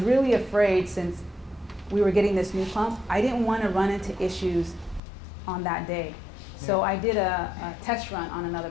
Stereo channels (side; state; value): right; drops out; at 5.0 s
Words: really afraid, since we were getting this new pump, I didn't want to run into issues on that day. So I did a test run on another